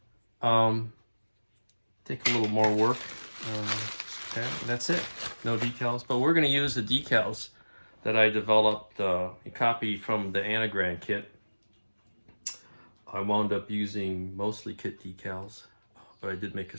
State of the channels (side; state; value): both; inverted; correlation -1.00